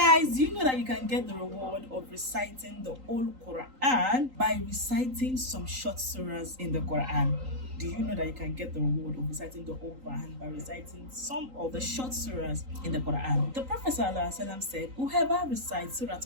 Guys, do you know that you can get the reward of reciting the whole Quran by reciting some short surahs in the Quran? Do you know that you can get the reward of reciting the whole Quran by reciting some of the short surahs in the Quran? The Prophet ﷺ said, whoever recites Surah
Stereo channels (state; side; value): late; left; 3.8 ms